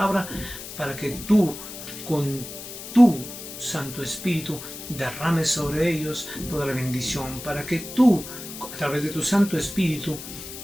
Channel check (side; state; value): left; noise; hiss, 11 dB below the sound